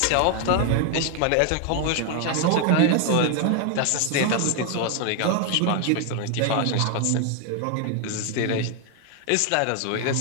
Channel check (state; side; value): different; both; correlation 0.01